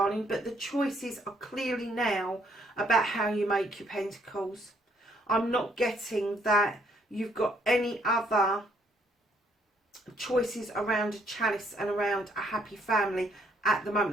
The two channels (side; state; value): both; normal; correlation 0.68